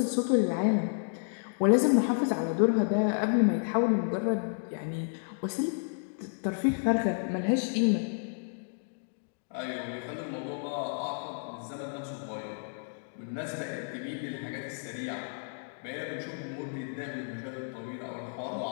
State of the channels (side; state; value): right; silent; digital silence